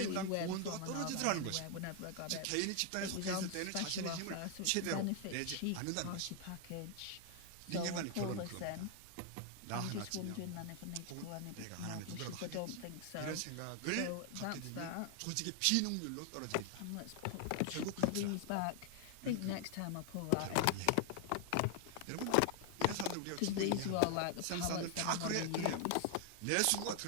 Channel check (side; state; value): both; different; correlation 0.00